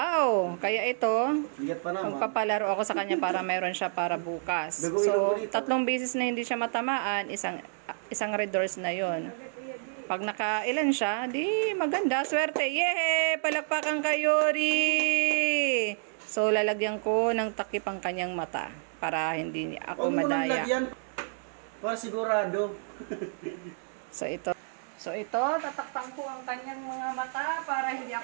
Kaya ito, magpapalaro ako sa kanya para mayroon siya para bukas. So, 3 beses na hindi siya matamaan, isang red horse na yon. Pag nakailan siya, di maganda. Swerte. Yehe! Palakpakan kayo, Ri! So, lalagyan ko ng takip ang kanyang mata para hindi ako madaya. Lagyan para sigurado. So, ito, tatakpan ko ang kanyang mga mata para hindi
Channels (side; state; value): left; silent; 58 dB below the other